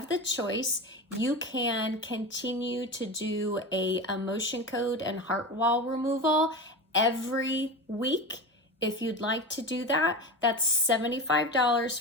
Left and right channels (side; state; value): both; normal; correlation 0.25